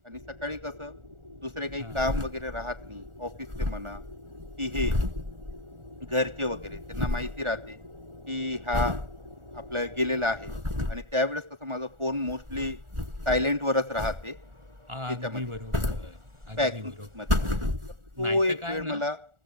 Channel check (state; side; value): late; left; 1.4 ms